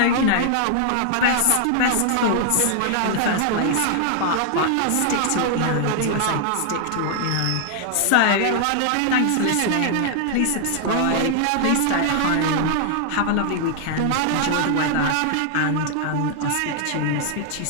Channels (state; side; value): different; both; correlation 0.00